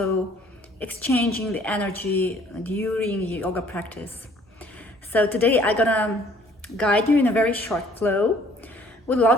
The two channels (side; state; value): both; normal; correlation 0.58